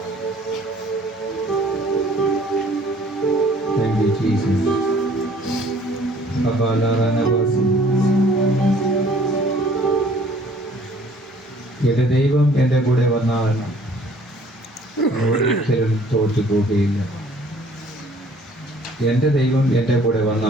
Thank you, Jesus. Abala Ranavasi. എന്റെ ദൈവം എൻ്റെ കൂടെ വന്നാൽ ഒരിക്കലും തോറ്റു പോകുകയില്ല. എൻ്റെ ദൈവം എൻ്റെ കൂടെ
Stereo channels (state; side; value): normal; both; correlation 0.56